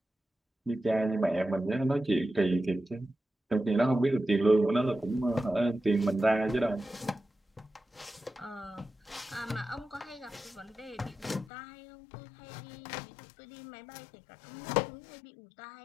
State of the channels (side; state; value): right; drops out; at 11.5 s